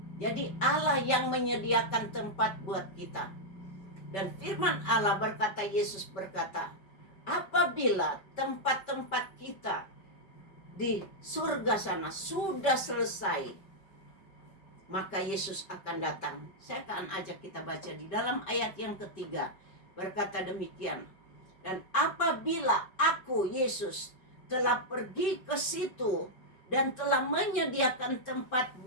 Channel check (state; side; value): late; right; 5.2 ms